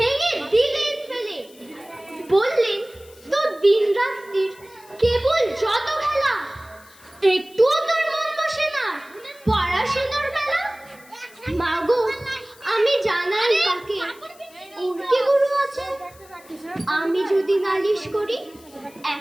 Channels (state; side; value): noise; left; hiss, 25 dB below the sound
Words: দিলেন ফেলে, বললেন তো দিন রাত্রির কেবল যত খেলা, একটুও তোর মন বসে না পড়াশোনার বেলা। মা গো, আমি জানাই কাকে ওর কি গুরু আছে, আমি যদি নালিশ করি